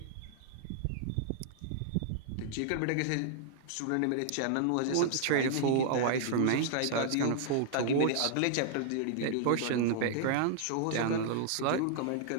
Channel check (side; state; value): both; different; correlation -0.01